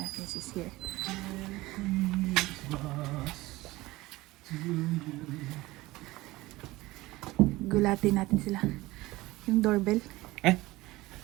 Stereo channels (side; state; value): left; quieter; 19.4 dB